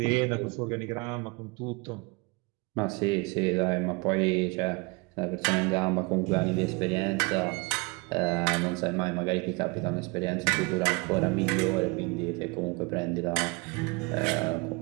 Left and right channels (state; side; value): quieter; left; 27.7 dB